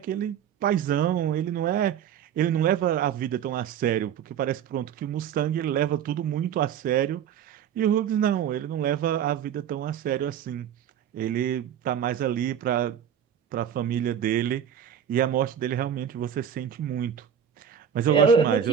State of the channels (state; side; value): quieter; left; 8.8 dB